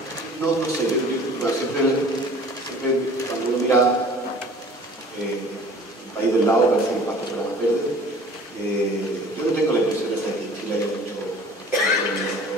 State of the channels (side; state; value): both; normal; correlation 0.47